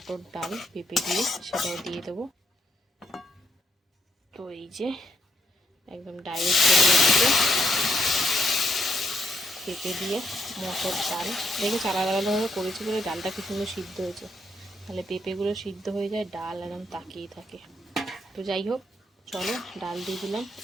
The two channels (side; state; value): both; normal; correlation 0.77